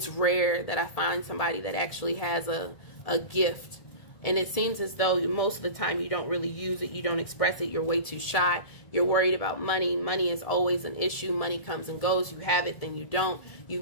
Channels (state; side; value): late; right; 1.7 ms